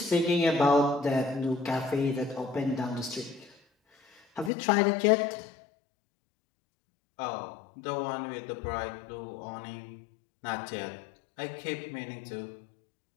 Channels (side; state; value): right; drops out; at 4.5 s